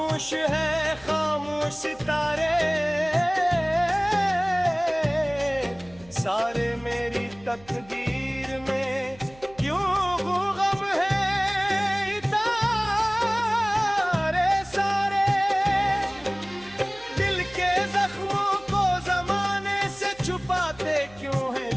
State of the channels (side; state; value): right; noise; hum, 24 dB below the sound